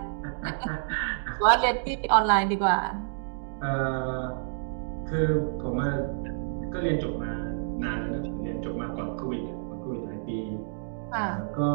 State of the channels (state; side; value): silent; left; digital silence